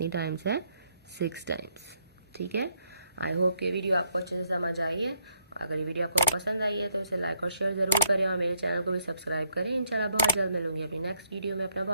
टाइम्स है? 6 टाइम्स। ठीक है, आई होप कि वीडियो आपको अच्छे से समझ आई है। अगर ये वीडियो आपको पसंद आई है तो इसे लाइक और शेयर ज़रूर करें और मेरे चैनल को भी सब्सक्राइब करें। इंशाल्लाह बहुत जल्द मिलूंगी अपनी नेक्स्ट वीडियो में। अपना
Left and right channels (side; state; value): both; inverted; correlation -0.74